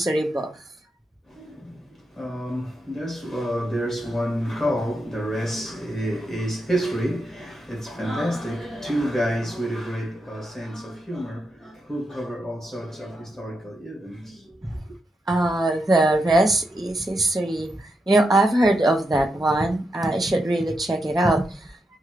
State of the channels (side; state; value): both; normal; correlation 0.84